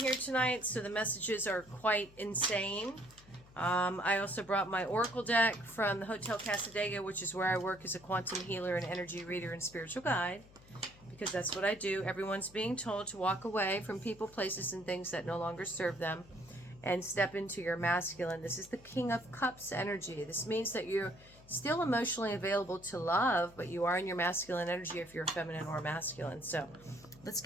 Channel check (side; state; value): left; noise; hum, 23 dB below the sound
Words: tonight, so the messages are quite insane. I also brought my Oracle deck from the Hotel Casadega, which is where I work as a quantum healer and energy reader and spiritual guide, because that's what I do. Everyone's being told to walk away from people, places, and things that no longer serve them, and step into your masculine. This is the King of Cups energy. This means that you're still emotionally available to love, but you are in your masculine energy if you're feminine or masculine. So let's